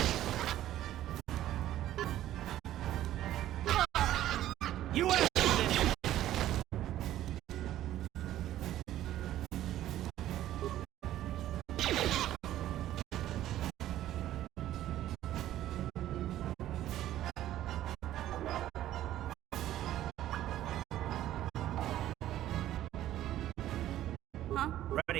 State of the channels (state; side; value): quieter; left; 13.2 dB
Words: You answered it! Huh?